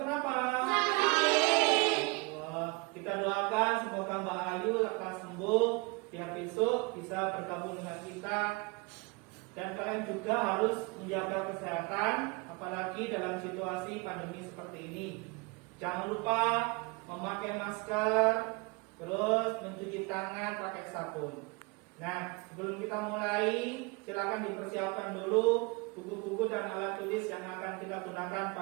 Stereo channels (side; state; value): left; quieter; 27.9 dB